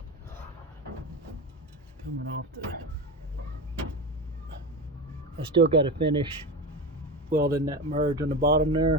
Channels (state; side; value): normal; both; correlation 0.23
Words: Coming off I still got to finish welding that merge on the bottom